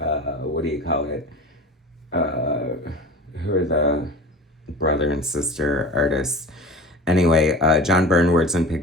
do you call it? Who are the brother and sister artists? Anyway, John Byrne words and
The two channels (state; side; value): normal; both; correlation 0.36